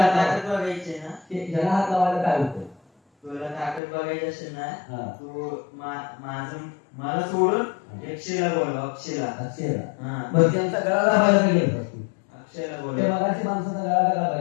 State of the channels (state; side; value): drops out; right; at 3.8 s